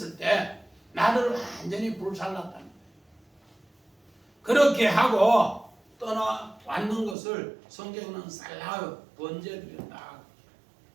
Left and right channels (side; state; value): left; drops out; at 7.2 s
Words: 때 나를 완전히 불살랐다는 거예요. 그렇게 하고 떠나왔는 것을 성경은 살라우 번제드렸다.